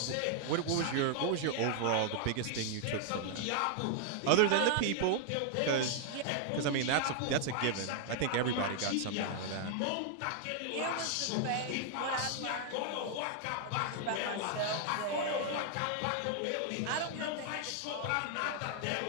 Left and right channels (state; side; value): different; both; correlation 0.00